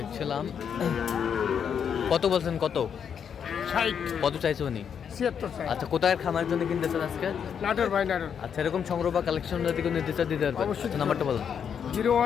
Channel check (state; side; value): quieter; right; 7.6 dB